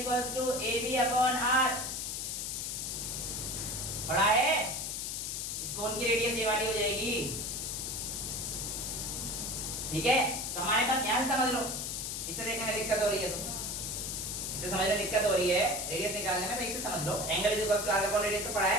to AB upon r। पढ़ा है? इस कोण की रेडियस ये वाली हो जाएगी, ठीक है? तो हमारे पास यहां से समझ लो, इससे देखने में दिक्कत हो रही है तो इससे समझने में दिक्कत हो रही है रेडियस निकालने में, तो इससे समझ लो angle is equals to arc upon radius तो पढ़ा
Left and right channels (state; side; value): noise; left; hiss, 3 dB below the sound